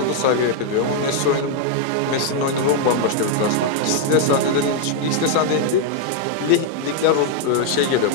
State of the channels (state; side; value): different; both; correlation 0.00